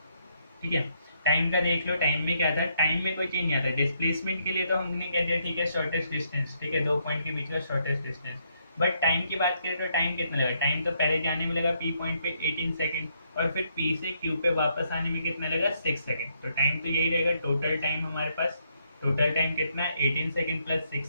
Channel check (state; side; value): inverted; both; correlation -0.74